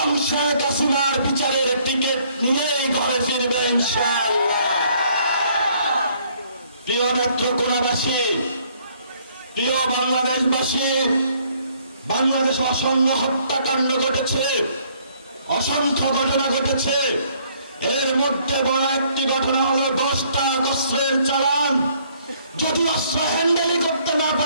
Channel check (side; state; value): both; inverted; correlation -0.64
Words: শেখ হাসিনার বিচারের টিকিট নিয়েই ঘরে ফিরবে ইনশাআল্লাহ। প্রিয় নেত্রকোনাবাসী, প্রিয় বাংলাদেশবাসী, বাংলাদেশে অসংখ্য হত্যাকাণ্ড ঘটেছে, অসংখ্য ঘটনা ঘটেছে। এর মধ্যে বড় একটি ঘটনা হলো 10টা অস্ত্রের চালান। যদি অস্ত্র হ্যান্ডেলই করতে না